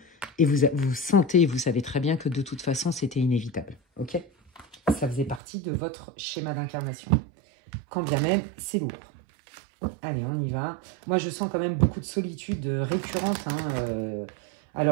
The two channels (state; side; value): drops out; left; at 5.4 s